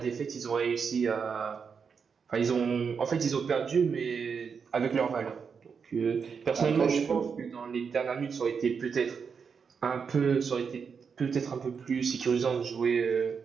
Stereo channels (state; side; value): quieter; left; 6.1 dB